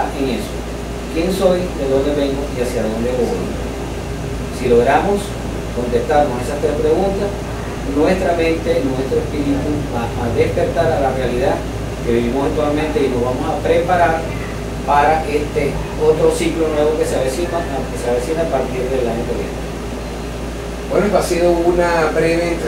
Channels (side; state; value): both; identical; correlation 1.00